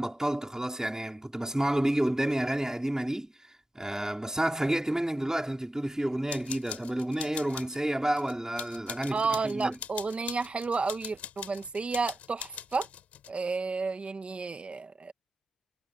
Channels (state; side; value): normal; both; correlation 0.92